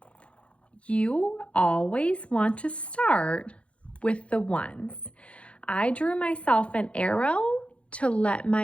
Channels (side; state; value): right; late; 0.061 ms